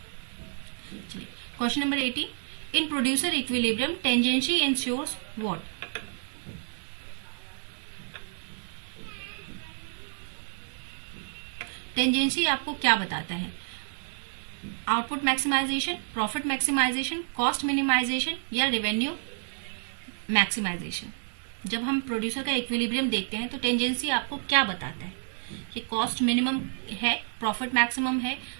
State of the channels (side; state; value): left; silent; digital silence